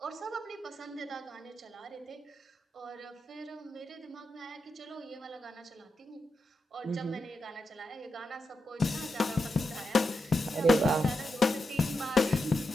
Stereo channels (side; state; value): both; normal; correlation 0.87